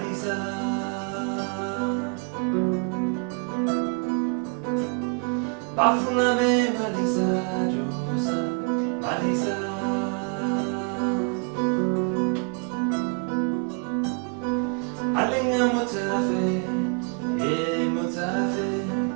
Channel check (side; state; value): left; quieter; 35.9 dB